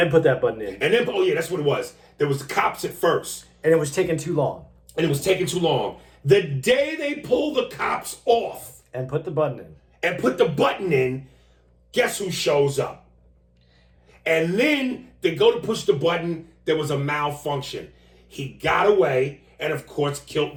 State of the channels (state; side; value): identical; both; correlation 1.00